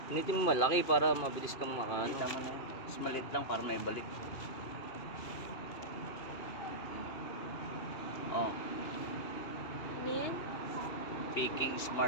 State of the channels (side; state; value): right; late; 2.5 ms